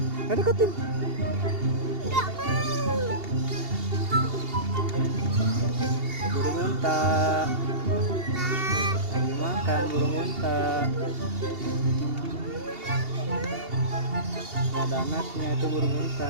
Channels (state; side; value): late; left; 2.8 ms